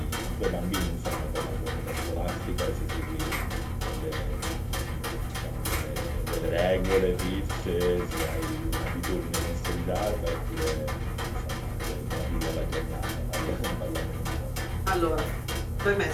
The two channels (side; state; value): both; identical; correlation 1.00